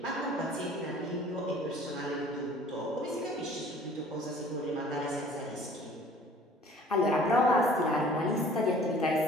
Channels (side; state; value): both; normal; correlation 0.51